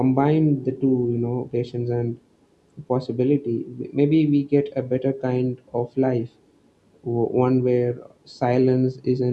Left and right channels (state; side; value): identical; both; correlation 1.00